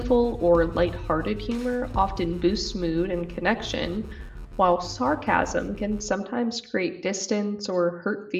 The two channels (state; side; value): identical; both; correlation 1.00